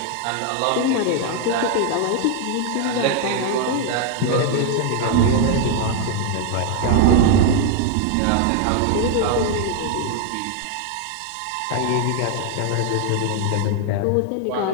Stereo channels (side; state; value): both; different; correlation 0.00